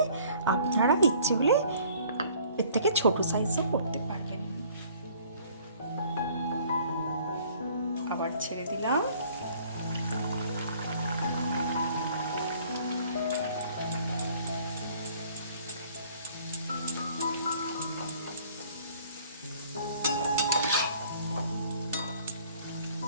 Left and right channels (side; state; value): both; inverted; correlation -0.56